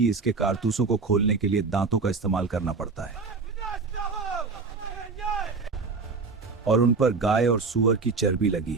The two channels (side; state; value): left; quieter; 4.4 dB